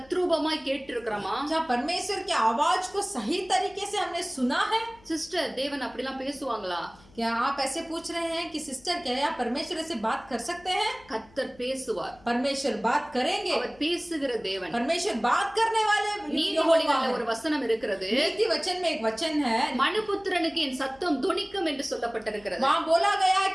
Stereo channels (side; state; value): left; noise; hum, 27 dB below the sound